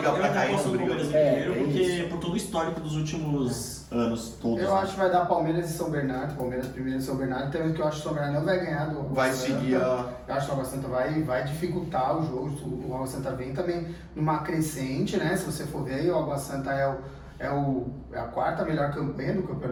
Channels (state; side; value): identical; both; correlation 1.00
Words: pra cair, não briga. Porque por todo o histórico dos últimos anos todos. Eu acho que vai dar Palmeiras e São Bernardo. Palmeiras primeiro e São Bernardo. Também que eu acho que o São Bernardo não vai ganhar do Vai seguir a... Eu acho que o Água Santa vai dificultar o jogo. O Água Santa vem também numa crescente, né? Se você for ver, o Água Santa é a quarta melhor campanha do